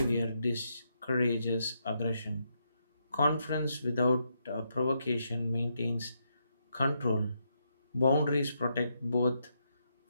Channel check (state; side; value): inverted; both; correlation -0.80